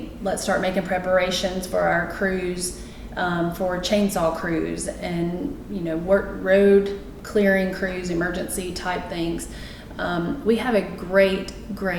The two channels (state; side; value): identical; both; correlation 1.00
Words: start making preparations for our crews, for chainsaw crews and, road clearing crews, emergency type things. We have a great